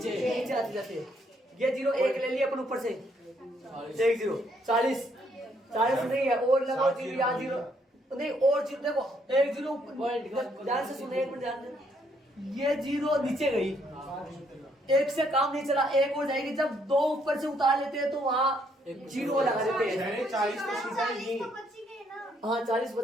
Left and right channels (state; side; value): normal; both; correlation 0.70